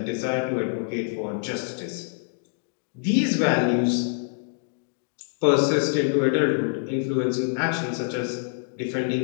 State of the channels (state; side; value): silent; right; digital silence